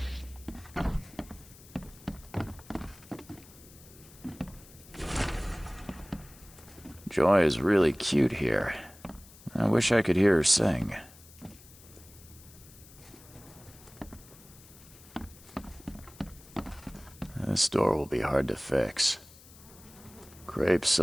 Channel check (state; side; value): noise; left; hiss, 22 dB below the sound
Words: Joy is really cute here. I wish I could hear her sing. This door will be hard to fix. Crepe,